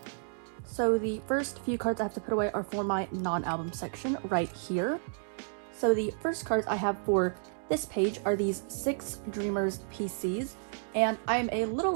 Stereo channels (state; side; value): silent; left; digital silence